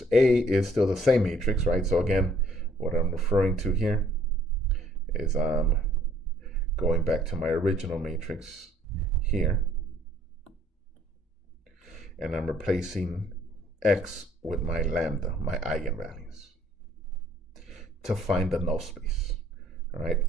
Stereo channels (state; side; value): normal; both; correlation 0.61